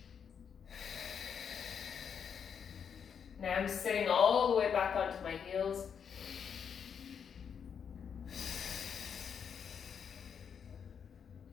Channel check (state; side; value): quieter; right; 7.3 dB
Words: Now I'm sitting all the way back onto my heels.